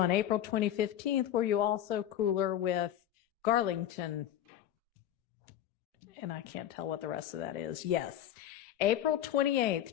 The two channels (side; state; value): right; quieter; 11.3 dB